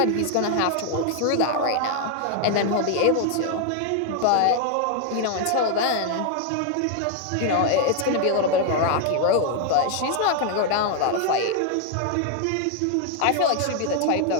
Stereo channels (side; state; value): both; different; correlation 0.00